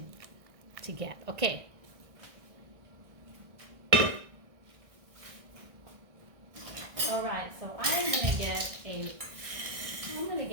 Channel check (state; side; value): late; left; 1.6 ms